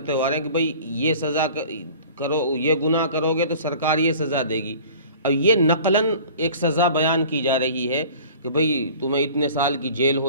ہو رہے ہیں کہ بھئی یہ سزا کرو، یہ گناہ کرو گے تو سرکار یہ سزا دے گی. اب یہ نقلاً ایک سزا بیان کی جا رہی ہے کہ بھئی تمہیں اتنے سال کی جیل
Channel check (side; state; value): both; inverted; correlation -0.44